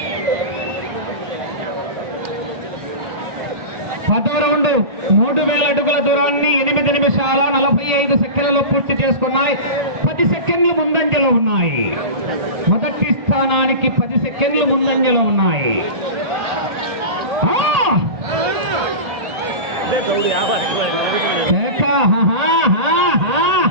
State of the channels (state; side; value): late; left; 1.8 ms